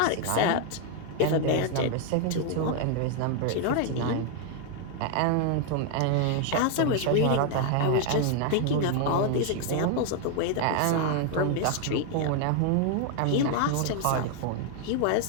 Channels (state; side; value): different; both; correlation 0.00